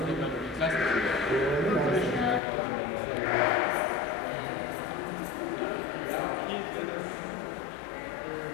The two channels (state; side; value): drops out; right; at 2.4 s